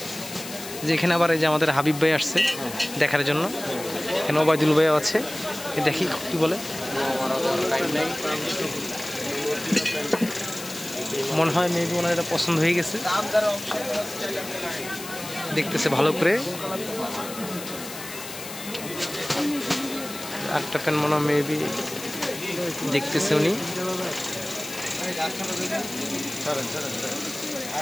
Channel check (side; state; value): left; noise; hiss, 11 dB below the sound